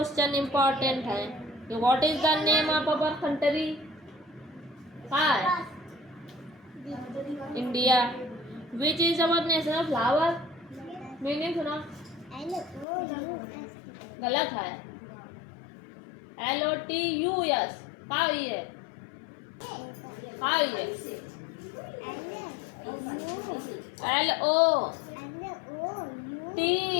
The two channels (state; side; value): drops out; right; at 12.9 s